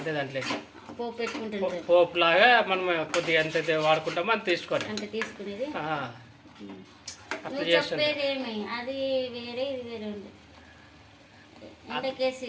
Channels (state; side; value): identical; both; correlation 1.00